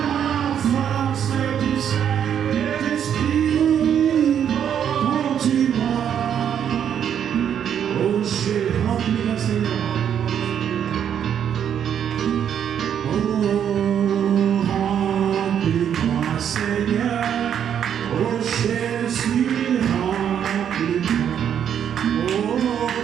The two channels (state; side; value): quieter; left; 8.9 dB